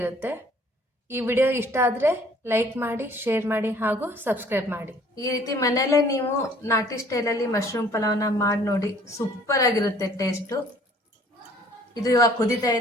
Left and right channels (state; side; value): normal; both; correlation 0.56